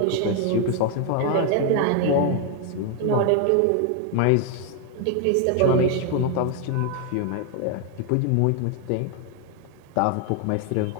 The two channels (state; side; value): different; both; correlation 0.00